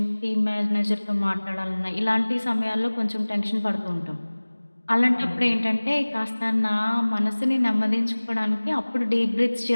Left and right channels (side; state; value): both; inverted; correlation -1.00